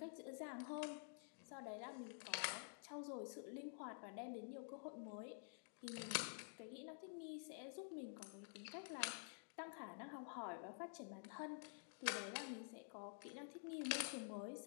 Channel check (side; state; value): right; silent; digital silence